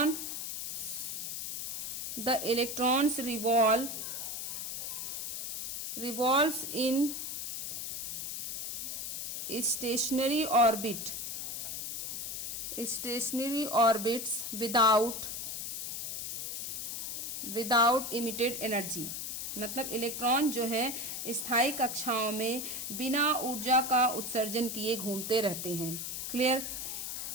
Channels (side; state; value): left; noise; hiss, 4 dB below the sound